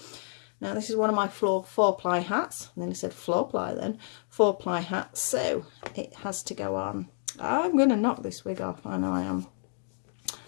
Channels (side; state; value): right; silent; 58 dB below the other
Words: Now this is one of my four-ply hats. And then I said floor-ply then. Four-ply hats. So it has to go on. I'm going to knock this wig off. I know I am.